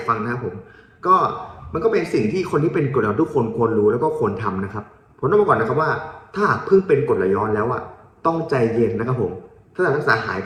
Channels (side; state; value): both; identical; correlation 1.00